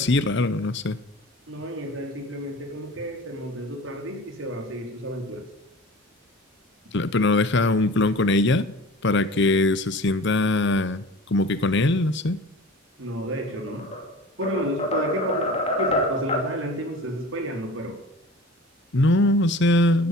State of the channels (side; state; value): both; normal; correlation 0.40